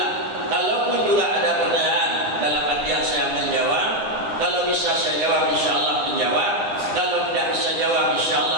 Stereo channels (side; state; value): left; late; 9.8 ms